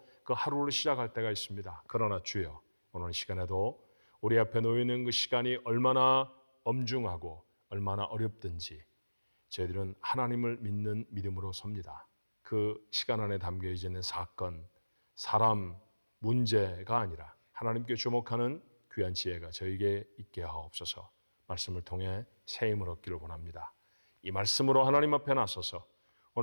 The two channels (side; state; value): both; inverted; correlation -1.00